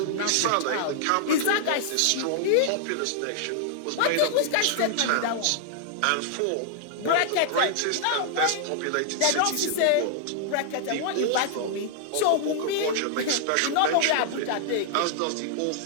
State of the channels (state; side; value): different; both; correlation -0.01